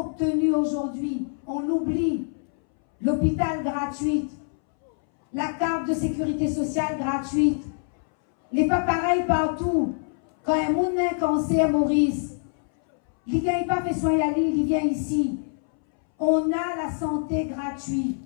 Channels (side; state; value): right; silent; 62 dB below the other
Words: aujourd'hui, on l'oublie, l'hôpital gratuit, la carte de sécurité sociale gratuite, les pas pareils partout. Quand un monde a un cancer, Maurice, il ne vient pas fait soin à l'île, il vient ici. On a la santé gratuite.